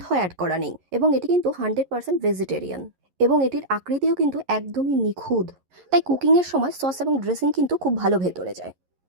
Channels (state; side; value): late; left; 11 ms